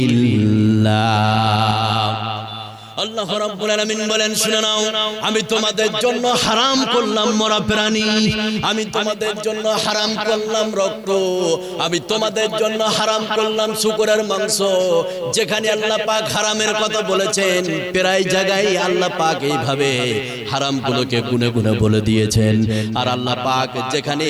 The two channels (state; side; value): identical; both; correlation 1.00